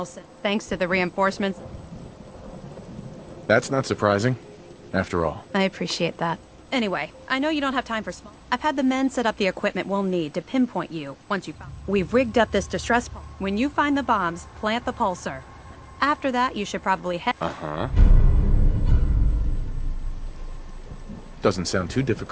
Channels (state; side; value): identical; both; correlation 1.00